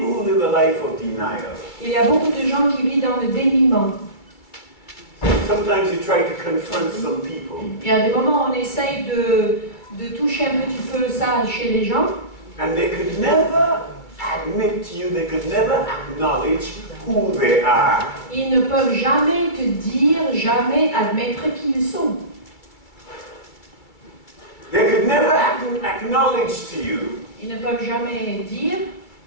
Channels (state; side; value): late; right; 2.3 ms